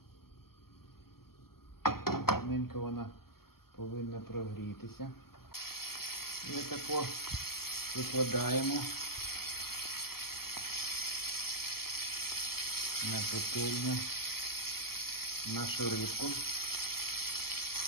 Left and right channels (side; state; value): right; late; 0.94 ms